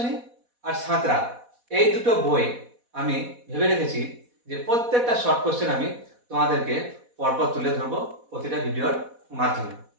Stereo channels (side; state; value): left; late; 4.1 ms